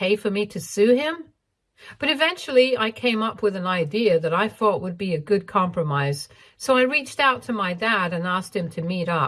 for me to sue him? But eventually I came up with an idea that I thought would be a good compromise. So I reached out to my dad and asked him to meet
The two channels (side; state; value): both; identical; correlation 1.00